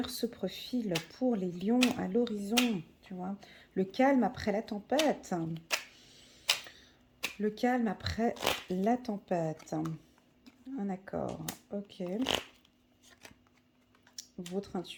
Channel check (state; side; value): identical; both; correlation 1.00